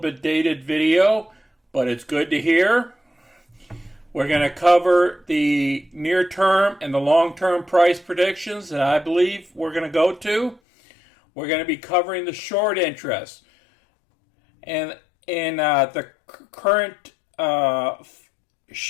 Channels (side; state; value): right; drops out; at 10.6 s